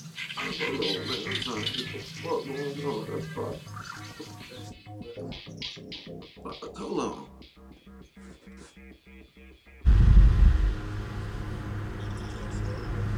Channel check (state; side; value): identical; both; correlation 1.00